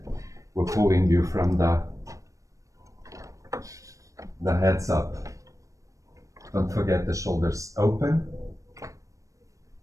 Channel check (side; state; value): left; late; 0.16 ms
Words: were pulling you from the heads up. Don't forget the shoulders open.